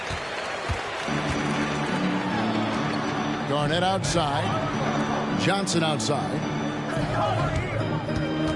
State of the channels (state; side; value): identical; both; correlation 1.00